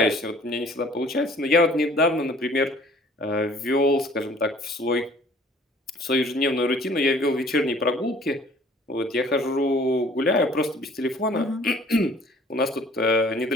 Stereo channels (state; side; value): normal; both; correlation 0.53